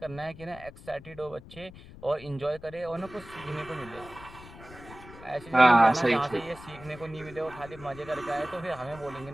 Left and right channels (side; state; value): left; noise; rumble, 18 dB below the sound